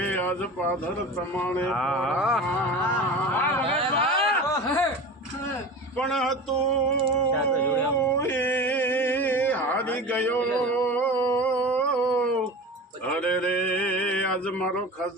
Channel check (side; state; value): both; normal; correlation 0.33